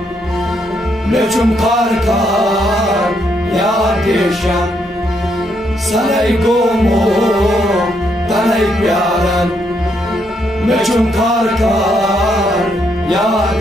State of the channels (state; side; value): normal; both; correlation 0.76